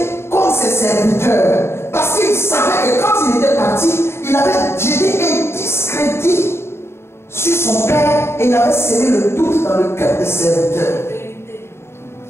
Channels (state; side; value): late; right; 0.12 ms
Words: comme ses serviteurs. Parce qu'il savait que quand il était parti, il avait jeté un discrédit sur son père et il avait semé le doute dans le cœur des serviteurs.